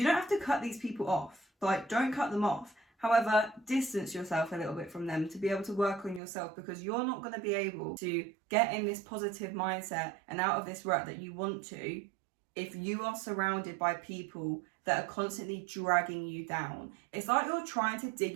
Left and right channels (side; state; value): left; drops out; at 6.2 s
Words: don't have to cut these people off. Like, don't cut them off. However, distance yourself a little bit from them to be able to work on yourself, because you're not going to be able to get in this positive mindset and out of this rut that you want to if you are surrounded by people that are constantly dragging you down. It's like you're trying to dig